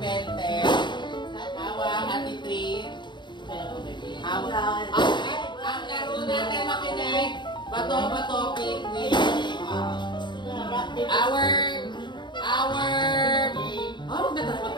Hawak, ati 3. Hawak. Ang laro natin, makinig. Bato, picnic. Our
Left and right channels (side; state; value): right; late; 0.22 ms